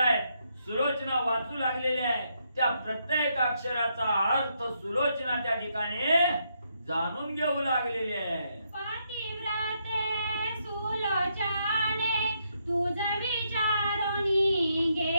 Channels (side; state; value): both; inverted; correlation -0.77